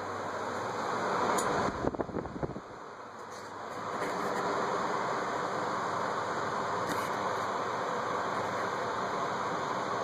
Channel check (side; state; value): both; identical; correlation 1.00